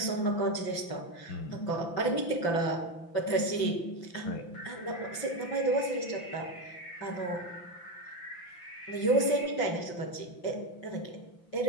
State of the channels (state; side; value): late; right; 5.9 ms